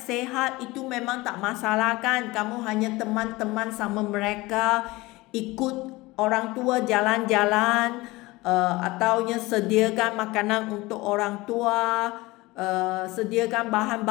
itu memang tak masalah kan. Kamu hanya teman-teman sama mereka, ikut orang tua jalan-jalan, ataunya sediakan makanan untuk orang tua, sediakan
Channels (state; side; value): quieter; right; 21.0 dB